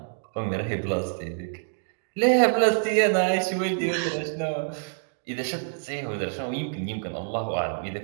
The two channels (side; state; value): left; silent; 60 dB below the other